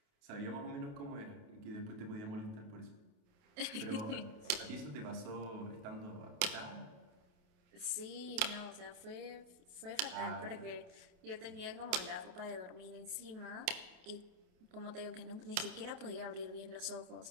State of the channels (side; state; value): left; late; 28 ms